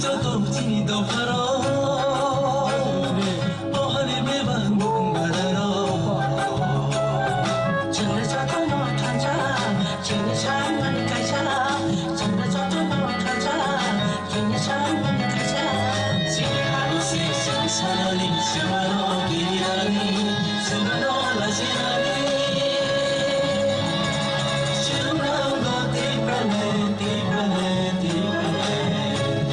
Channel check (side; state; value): both; identical; correlation 1.00